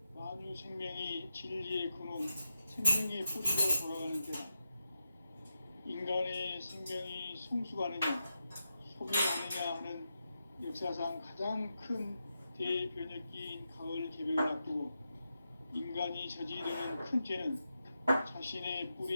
만유 생명이 진리의 근원, 생명의 뿌리로 돌아가는 때다. 인간의 생명이 성숙하느냐, 소멸하느냐 하는 역사상 가장 큰 대변혁기인 가을 개벽을 앞두고 인간이 저지르는 큰 죄는 자신의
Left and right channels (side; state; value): both; inverted; correlation -0.88